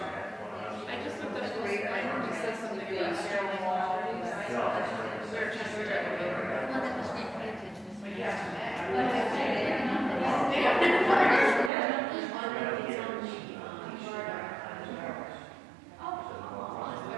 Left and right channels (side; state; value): left; drops out; at 11.7 s